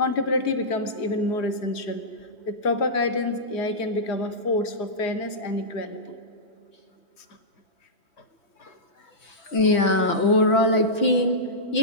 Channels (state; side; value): late; right; 3.1 ms